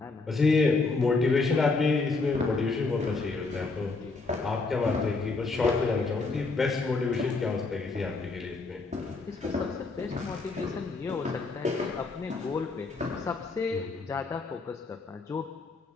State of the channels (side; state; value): right; quieter; 3.9 dB